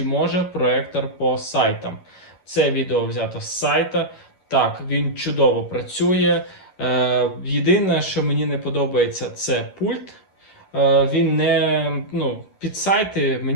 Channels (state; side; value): late; right; 11 ms